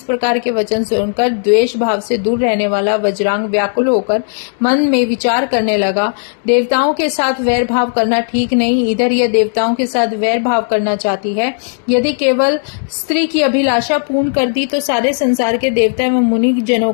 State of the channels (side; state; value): right; silent; digital silence